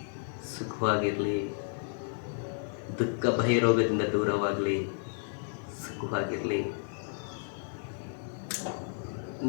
ಸುಖವಾಗಿರಲಿ, ದುಃಖ ಭಯ ರೋಗದಿಂದ ದೂರವಾಗಲಿ, ಸುಖವಾಗಿರಲಿ.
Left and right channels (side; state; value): right; silent; 56 dB below the other